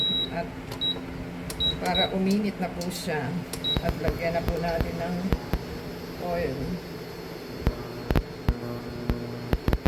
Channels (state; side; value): identical; both; correlation 1.00